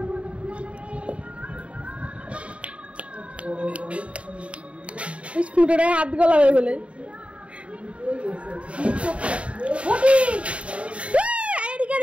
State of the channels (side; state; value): left; late; 0.062 ms